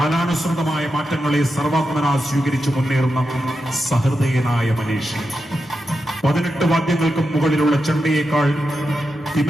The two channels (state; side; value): normal; both; correlation 0.88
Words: മാറ്റങ്ങളെ സർവാത്മനാ സ്വീകരിച്ചു മുന്നേറുന്ന സഹൃദയനായ മനീഷി. 18 വാദ്യങ്ങൾക്കും മുകളിലുള്ള ചെണ്ടയേക്കാൾ